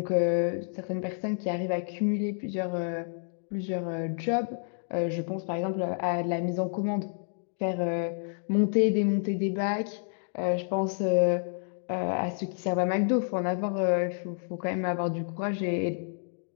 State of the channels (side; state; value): right; silent; digital silence